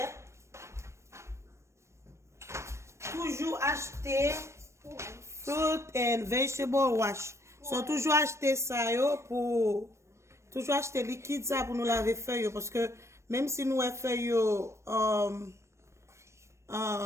toujours acheter fruit and vegetable wash so toujours acheter ça yo pour toujours acheter liquide ça pour nous laver feuille parce que même si nous feuille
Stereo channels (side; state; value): left; late; 0.13 ms